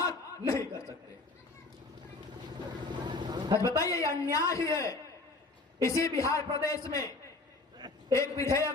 नहीं कर सकते। आज बताइए, ये अन्याय ही है। इसी बिहार प्रदेश में एक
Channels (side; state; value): right; quieter; 3.4 dB